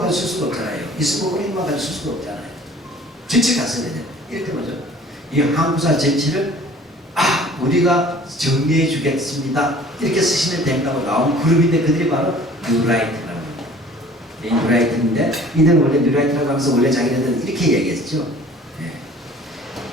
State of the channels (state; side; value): normal; both; correlation 0.49